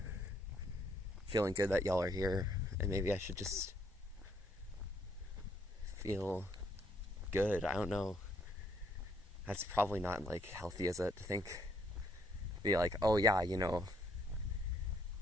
feeling good that y'all are here, and maybe I should just feel good. I don't know. That's probably not like healthy, is it? To think, be like, oh yeah, you know,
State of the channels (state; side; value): normal; both; correlation 0.70